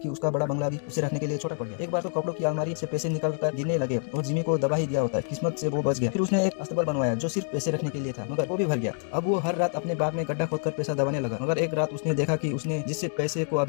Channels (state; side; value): silent; right; 60 dB below the other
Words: उसका बड़ा बंगला भी उसे रखने के लिए छोटा पड़ गया। एक बार तो कपड़ों की अलमारी से पैसे निकाल कर गिनने लगे और जिमी को दबा ही दिया होता है। किस्मत से वो बच गया। फिर उसने एक अस्तबल बनवाया जो सिर्फ पैसे रखने के लिए था, मगर वो भी भर गया। अब वो हर रात अपने बाग में गड्ढा खोदकर पैसा दबाने लगा। मगर एक रात उसने देखा कि उसने जिस पैसे को